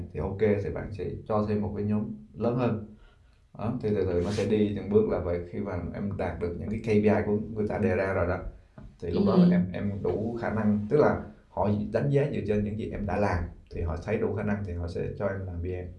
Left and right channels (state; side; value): identical; both; correlation 1.00